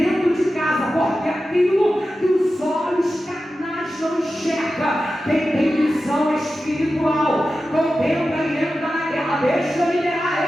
de casa, porque aquilo que os olhos carnais não enxergam, quem tem visão espiritual contempla e entra na guerra. Deixa eu liderar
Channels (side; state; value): both; normal; correlation 0.93